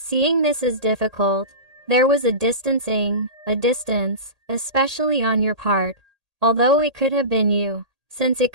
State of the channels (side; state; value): left; late; 1.8 ms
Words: this is difficult, there was a distancing, a distance, especially on your part, although it could have been you, since it